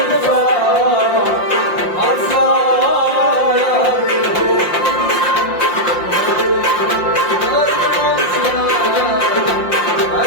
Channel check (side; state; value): right; late; 5.7 ms